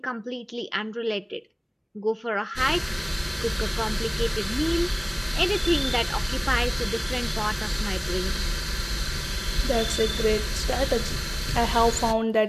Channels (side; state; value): both; identical; correlation 1.00